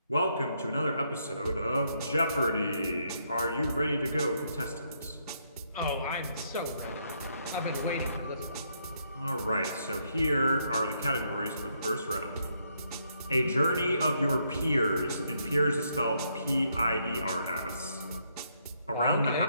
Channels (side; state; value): both; inverted; correlation -0.75